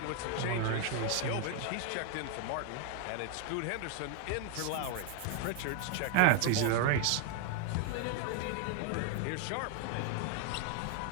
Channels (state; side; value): different; both; correlation 0.01